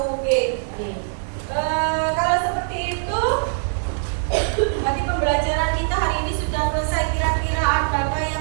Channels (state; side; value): silent; left; digital silence